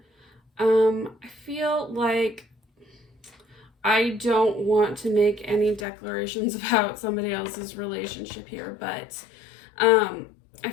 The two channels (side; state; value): right; drops out; at 5.9 s